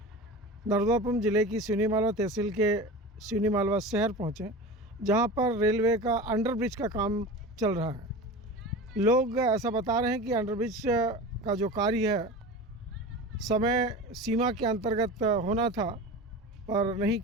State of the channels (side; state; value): both; normal; correlation 0.32